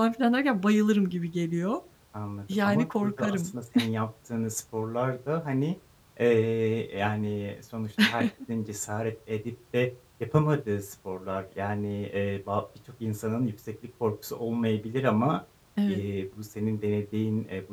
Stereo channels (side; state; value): both; identical; correlation 1.00